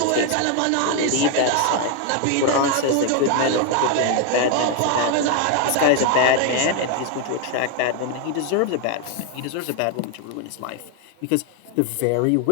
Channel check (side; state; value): both; different; correlation 0.00